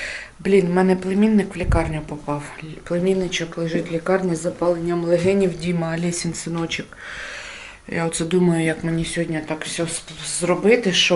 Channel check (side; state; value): both; identical; correlation 1.00